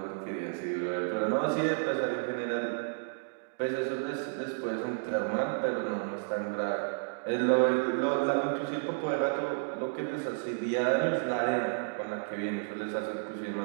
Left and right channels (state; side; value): silent; left; digital silence